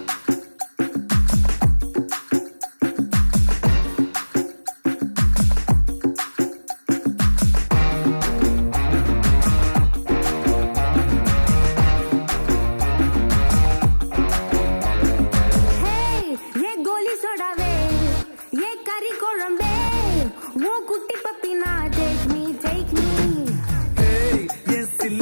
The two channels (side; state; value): both; inverted; correlation -1.00